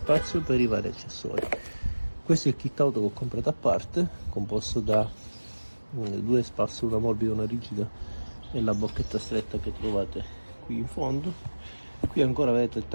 per i vari accessori. Questo è il kit auto che ho comprato a parte, composto da due spazzole, una morbida e una rigida, e la bocchetta stretta che trovate qui in fondo. Qui ancora vedete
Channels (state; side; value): inverted; both; correlation -1.00